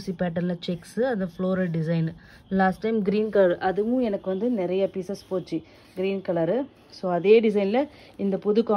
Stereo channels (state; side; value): identical; both; correlation 1.00